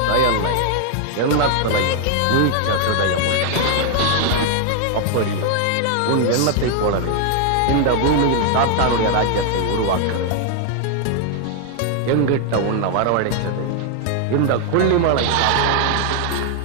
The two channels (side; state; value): both; different; correlation 0.00